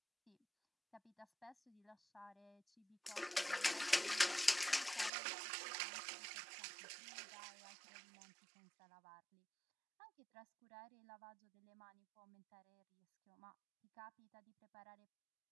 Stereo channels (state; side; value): drops out; left; at 5.1 s